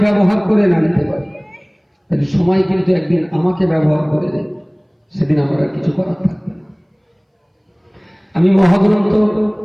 ব্যবহার করে না নিতে পারি, তাহলে সময় কিন্তু একদিন আমাকে ব্যবহার করে দেয়, সেদিন আমার আর কিছু করার থাকবে না। আমি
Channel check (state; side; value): identical; both; correlation 1.00